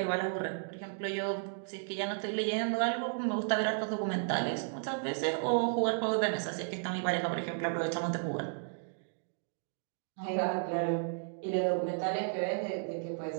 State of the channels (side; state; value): left; silent; digital silence